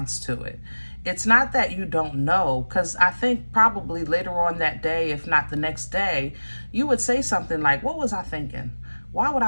to it. It's not that you don't know, because I think probably later on that day, if not the next day, you would say something like, what was I thinking? Why would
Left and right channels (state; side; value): inverted; both; correlation -1.00